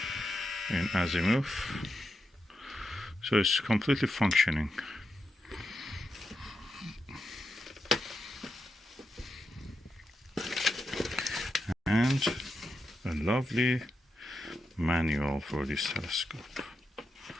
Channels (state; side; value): normal; both; correlation 0.86